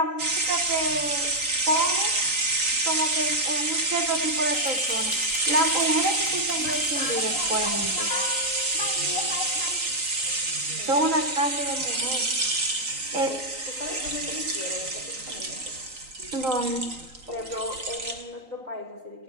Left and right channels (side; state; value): left; late; 3.9 ms